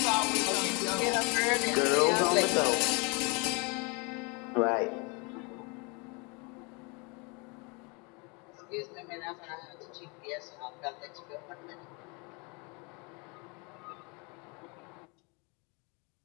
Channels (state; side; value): quieter; right; 30.5 dB